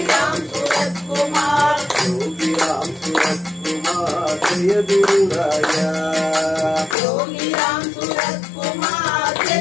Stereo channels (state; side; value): drops out; right; at 7.0 s